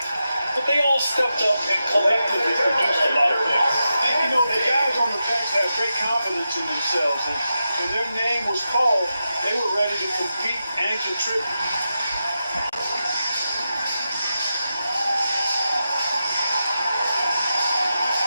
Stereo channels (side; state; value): both; inverted; correlation -0.89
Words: But they all stepped up and collectively produced a lot of points. And, you know, the guys on the bench have great confidence in themselves. And when their name was called, they were ready to compete and contribute.